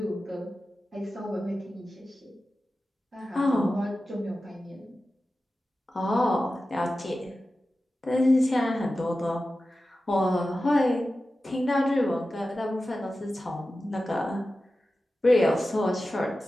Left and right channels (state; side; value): normal; both; correlation 0.94